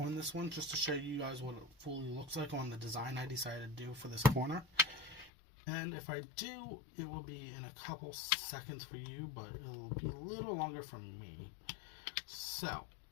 this one just to show you guys what it fully looks like on the design I decided to do for this corner. And if I do, it will be in a couple seconds for you, but it will be a little longer for me. So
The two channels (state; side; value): drops out; right; at 5.3 s